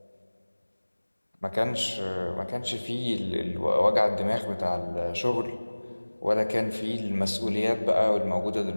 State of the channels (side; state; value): both; inverted; correlation -1.00